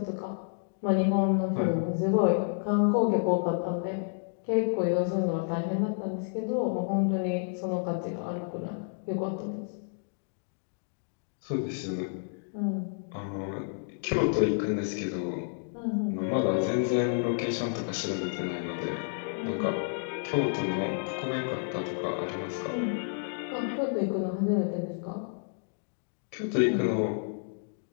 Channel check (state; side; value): silent; right; digital silence